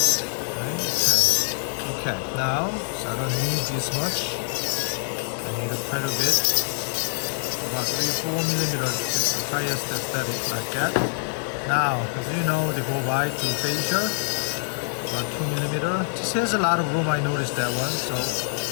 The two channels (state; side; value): silent; right; digital silence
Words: 10. Okay, now, so I don't need this much. I need quite a bit, about 3-4 millimeters, just the highest aesthetic like that. Now, as you know, they go by to facial, about 2 millimeter. This has a lot of room, I noticed that one, so